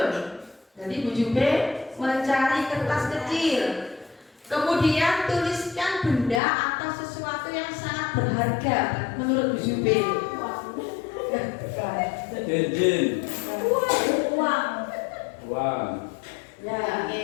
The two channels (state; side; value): drops out; right; at 6.4 s